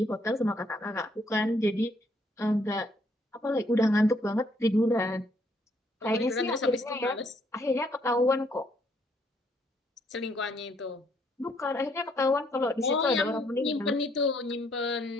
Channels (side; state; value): both; normal; correlation 0.69